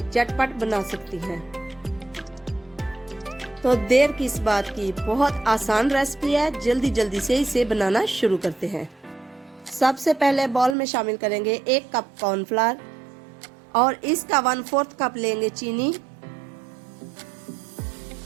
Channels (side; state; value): left; drops out; at 10.8 s